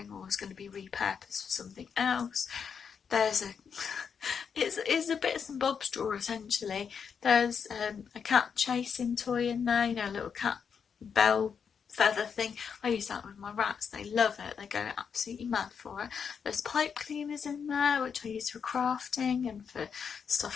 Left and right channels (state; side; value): quieter; right; 6.7 dB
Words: or is going to be repurposed for something else. There's it's a bits and bobs drawer essentially. There's a cat chasing toy in there, you know, a little cat bell feather thing. I use that with my rats, they love it, they go absolutely mad for it. There's pipe cleaners in there, which I use for crafting and for stuff